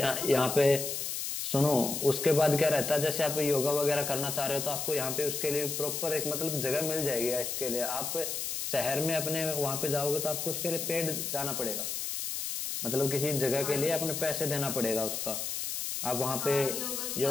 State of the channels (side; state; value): left; noise; hiss, 3 dB below the sound